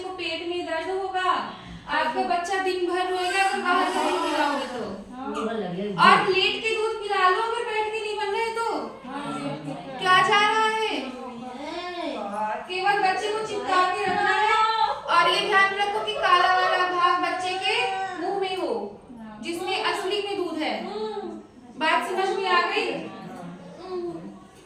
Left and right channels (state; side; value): identical; both; correlation 1.00